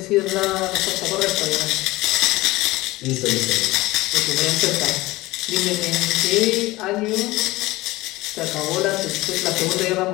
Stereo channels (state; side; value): quieter; right; 19.5 dB